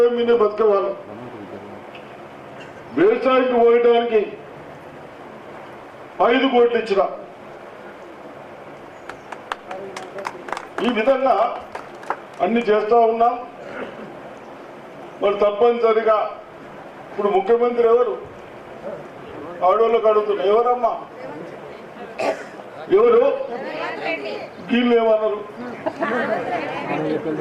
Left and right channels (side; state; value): both; identical; correlation 1.00